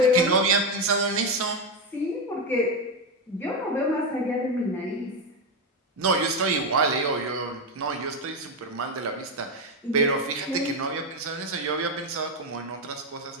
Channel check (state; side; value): normal; both; correlation 0.09